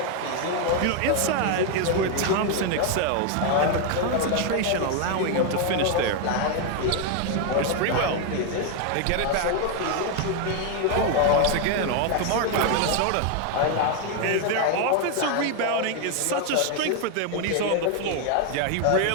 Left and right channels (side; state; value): both; different; correlation 0.01